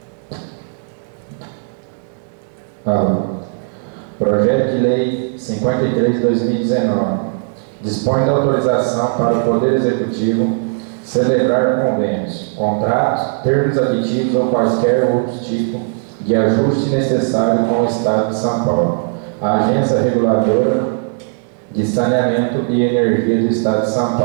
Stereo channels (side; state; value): left; silent; digital silence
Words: Projeto de Lei 53 de 2019 dispõe da autorização para o Poder Executivo celebrar convênios, contratos, termos aditivos ou quaisquer outros tipos de ajuste necessário com o Estado de São Paulo, a Agência Reguladora de Saneamento e Energia do Estado de São